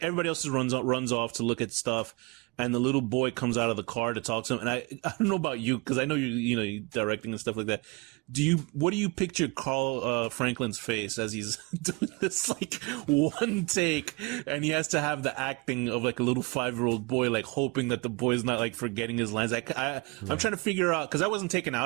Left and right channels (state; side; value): quieter; left; 26.2 dB